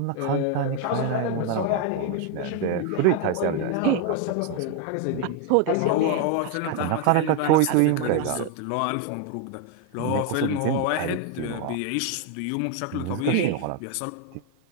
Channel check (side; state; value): both; different; correlation 0.01